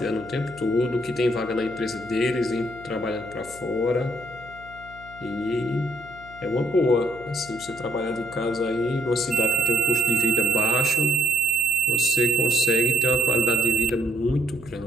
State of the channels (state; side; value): noise; left; hum, 19 dB below the sound